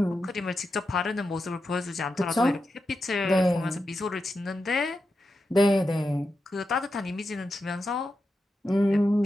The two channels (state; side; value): normal; both; correlation 0.89